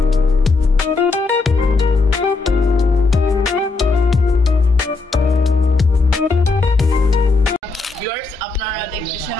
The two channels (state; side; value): quieter; right; 3.9 dB